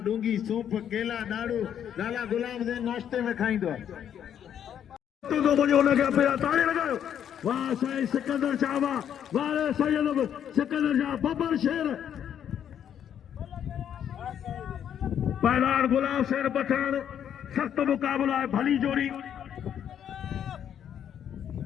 डूंगी सूप केला ॾाढ़ू लाला गुलाम दे नाश्ते में खाईंदो तो मुझे उन्हें क्या पिया ताली लगायो वाह साईं सिकंदर शाह वाह रे सैयद सिकंदर शाह बब्बर शेर पहलवान गुलाम शेर पठान सख्त मुकाबला है भली जोड़ी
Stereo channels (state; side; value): quieter; right; 9.3 dB